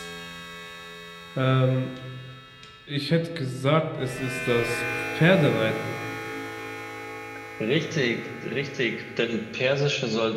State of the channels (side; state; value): both; identical; correlation 1.00